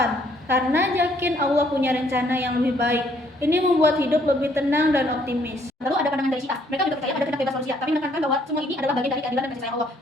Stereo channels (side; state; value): both; normal; correlation 0.65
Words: karena yakin Allah punya rencana yang lebih baik. Ini membuat hidup lebih tenang dan optimis. Lalu ada pandangan dari Syiah. Mereka juga percaya ada kehendak bebas manusia, tapi menekankan bahwa semua ini adalah bagian dari keadilan dan kasih sayang Allah.